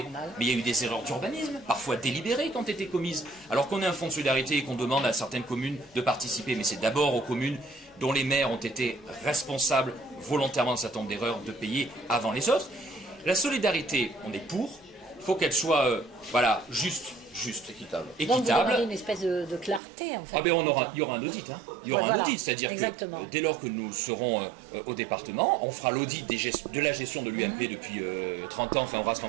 mais il y a eu des erreurs d'urbanisme, parfois délibérées quand étaient commises. Alors qu'on ait un fonds de solidarité et qu'on demande à certaines communes de participer, mais c'est d'abord aux communes dont les maires ont été responsables volontairement d'un certain nombre d'erreurs de payer avant les autres. La solidarité, on est pour, il faut qu'elle soit juste, équitable. Donc vous aurez une espèce de clarté en fait. Ah ben il y aura un audit, hein. Il y aura un audit, c'est-à-dire que dès lors que nous serons au département, on fera l'audit de la gestion de l'UMP depuis 30 ans, enfin Horace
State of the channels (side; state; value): left; drops out; at 19.8 s